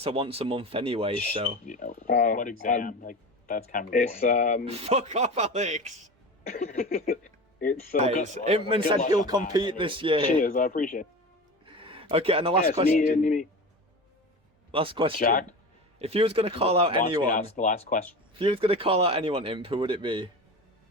are once a month anyway. So You know, so- what exam? Like that's kind of. It's boring. fuck off, Alex. it's Guys, good- Impmon good said luck he'll on that, compete anyway. this year. cheers. I appreciate it. Okay, and the last Yes, question. me. Last question. Jack If you was gonna call out wants me to anyone, ask the last question. if you was gonna call out anyone, Imp, who would it be?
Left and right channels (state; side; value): normal; both; correlation 0.30